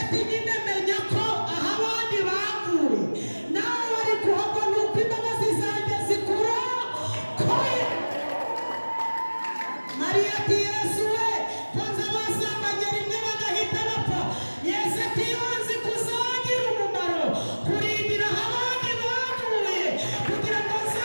ati nyine menya ko aho abandi baguye nawe wari kuhagwa nuko imbabazi zanjye zikurokoye. Mariya ati Yesu we konza basambanye rimwe bagahita bapfa. Yesu ati iyo nzi kuzagira umumaro kurindira aho abandi baguye kugira ngo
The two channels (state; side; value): inverted; both; correlation -1.00